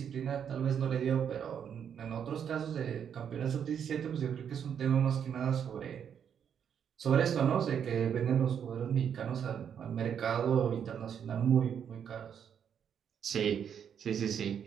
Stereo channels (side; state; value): left; quieter; 8.2 dB